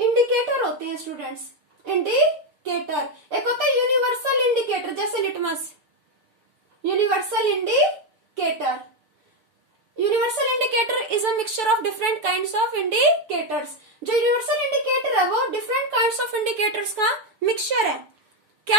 होते हैं स्टूडेंट्स, इंडिकेटर। एक होता है यूनिवर्सल इंडिकेटर, जैसे litmus, universal indicator. Universal indicator is a mixture of different kinds of indicators. जो यूनिवर्सल इंडिकेटर है वो डिफरेंट काइंड्स ऑफ इंडिकेटर्स का मिक्सचर है।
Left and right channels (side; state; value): left; late; 6.6 ms